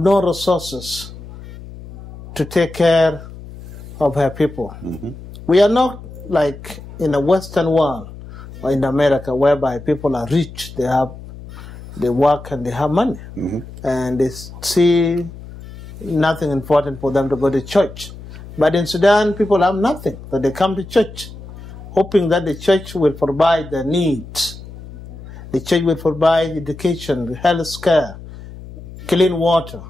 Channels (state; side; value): noise; left; hum, 15 dB below the sound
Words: resources to take care of her people. We are not like in the Western world or in America, whereby people are rich, they work and they have money, and they see nothing important for them to go to church. But in Sudan, people have nothing, but they come to church, hoping that the church will provide their needs. The church will provide education, health care, clean water,